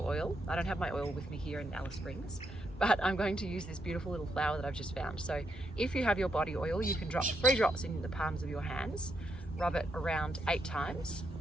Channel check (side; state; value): both; normal; correlation 0.79